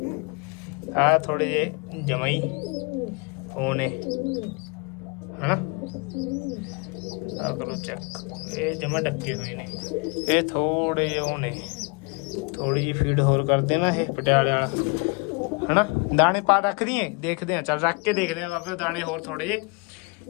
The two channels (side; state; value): right; quieter; 31.1 dB